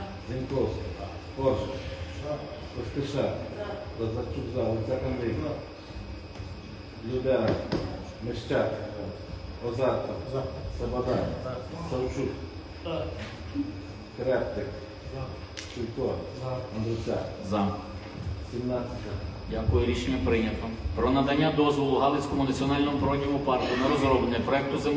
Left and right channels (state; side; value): identical; both; correlation 1.00